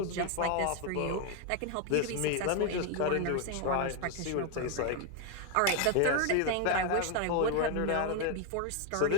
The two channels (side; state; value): both; different; correlation 0.01